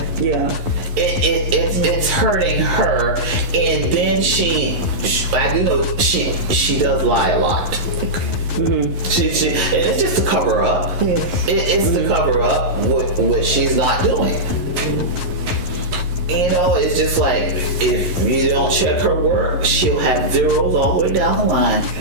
Yeah. It's hurting her, and then I do know she does lie a lot. She and it's just to cover up. It's to cover up what she's not doing. You know, it's just like if you don't check her work, she'll have zeros all the way down the line.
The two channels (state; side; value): late; left; 11 ms